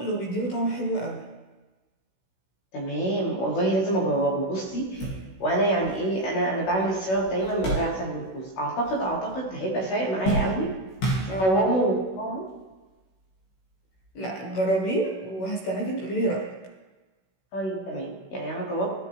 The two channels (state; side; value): late; right; 16 ms